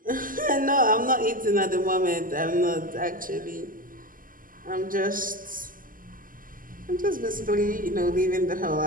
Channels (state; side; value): late; left; 0.41 ms